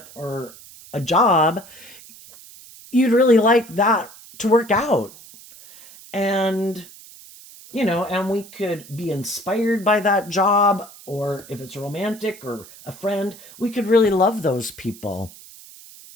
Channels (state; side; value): noise; right; hiss, 20 dB below the sound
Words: or a job, you'd really like that to work out. And and we could be inspired by that job, or if it's romantic or a friend, we could really love those people.